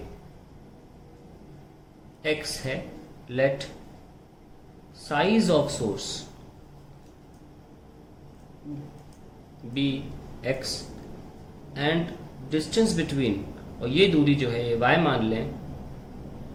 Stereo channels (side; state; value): both; identical; correlation 1.00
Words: x है, let size of source be x and distance between, और ये दूरी जो है ये y मान लें.